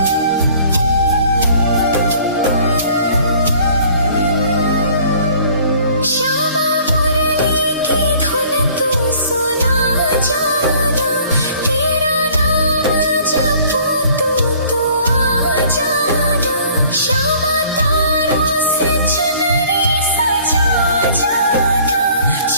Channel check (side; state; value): both; inverted; correlation -0.54